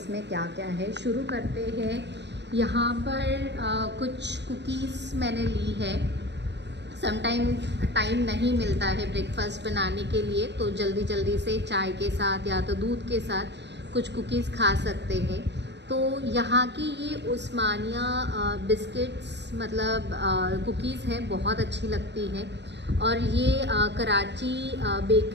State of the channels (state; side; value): late; left; 0.50 ms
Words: क्या क्या है। शुरू करते हैं। यहाँ पर कुछ कुकीज़ मैंने ली है। टाइम नहीं मिलता है ब्रेकफास्ट बनाने के लिए, तो जल्दी जल्दी से चाय के साथ या तो दूध के साथ कुछ कुकीज़ खा सकते हैं। तो यहाँ की ये उस्मानिया बिस्किट्स मतलब कुकीज़ है, बहुत अच्छी लगती है। और ये कराची